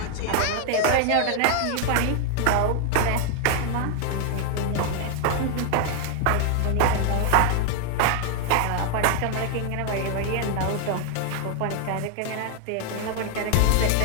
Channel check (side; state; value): both; different; correlation 0.00